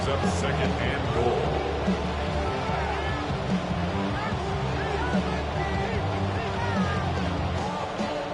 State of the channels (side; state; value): both; identical; correlation 1.00